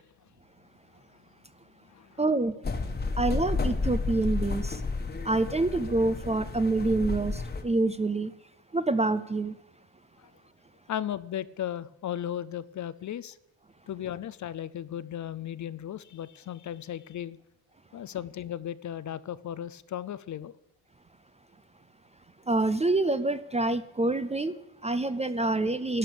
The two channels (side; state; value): both; normal; correlation 0.60